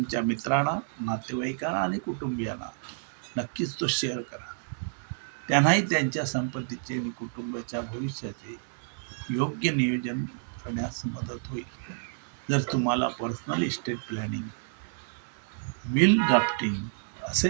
मित्रांना, नातेवाईकांना आणि कुटुंबियांना नक्कीच तो शेअर करा. त्यांनाही त्यांच्या संपत्तीचे आणि कुटुंबाच्या भविष्याचे योग्य नियोजन करण्यास मदत होईल. जर तुम्हाला personal estate planning, will drafting,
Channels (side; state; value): left; silent; digital silence